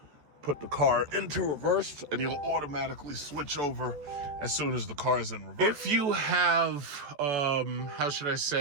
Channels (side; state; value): left; late; 14 ms